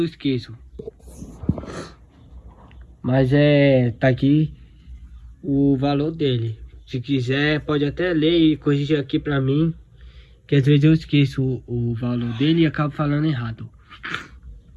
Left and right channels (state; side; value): identical; both; correlation 1.00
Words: esqueço. Mas tá aqui o valor dele. Se quiser, pode até ler e corrigir aqui pra mim. Que às vezes eu esqueço o valor dele e acabo falando errado.